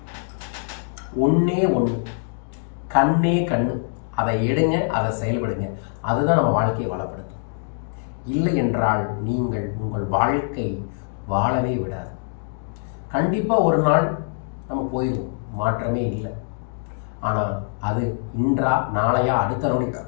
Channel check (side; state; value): right; silent; digital silence